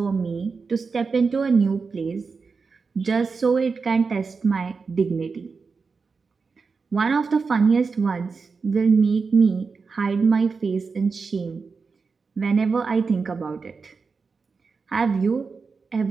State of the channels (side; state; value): left; quieter; 4.8 dB